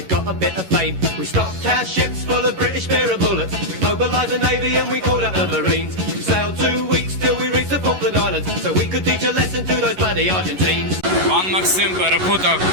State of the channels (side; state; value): left; late; 11 ms